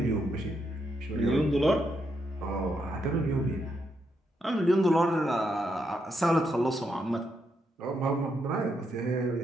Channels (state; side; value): normal; both; correlation 0.79